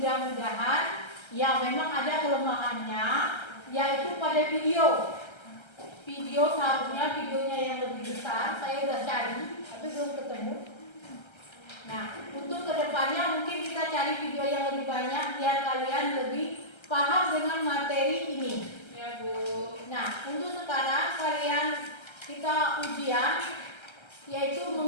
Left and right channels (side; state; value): right; late; 1.3 ms